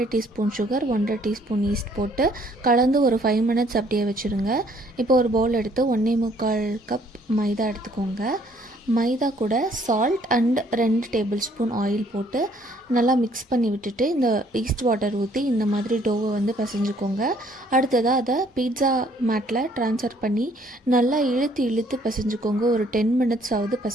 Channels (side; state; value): both; normal; correlation 0.62